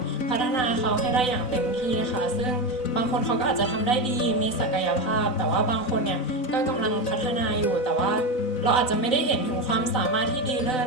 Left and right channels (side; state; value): right; late; 4.0 ms